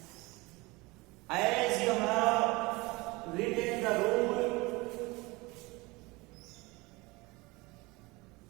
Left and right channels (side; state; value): left; quieter; 23.4 dB